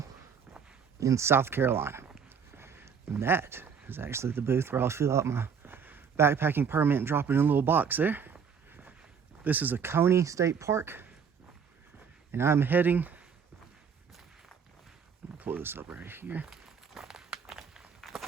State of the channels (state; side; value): quieter; left; 6.7 dB